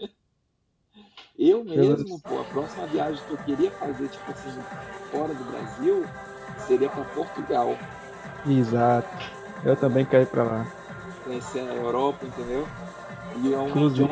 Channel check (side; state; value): both; identical; correlation 1.00